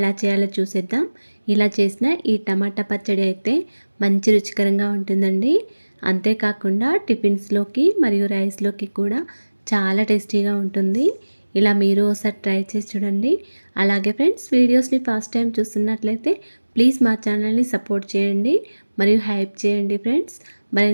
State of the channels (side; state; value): both; inverted; correlation -1.00